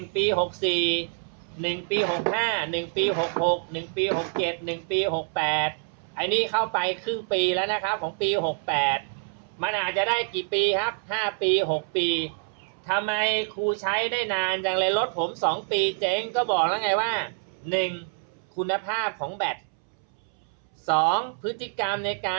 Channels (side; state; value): left; silent; 61 dB below the other